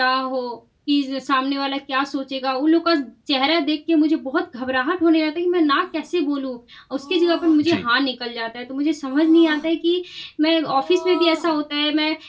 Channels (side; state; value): both; identical; correlation 1.00